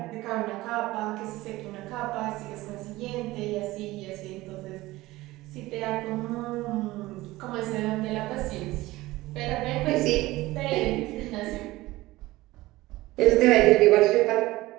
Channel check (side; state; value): left; quieter; 18.6 dB